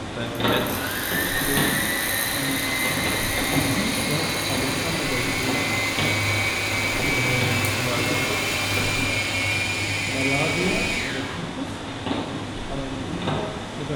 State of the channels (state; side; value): identical; both; correlation 1.00